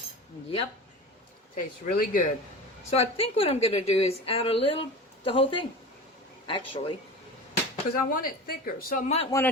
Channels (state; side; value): normal; both; correlation 0.32